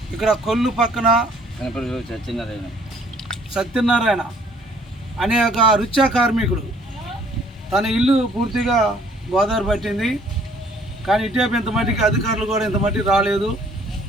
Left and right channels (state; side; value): normal; both; correlation 0.60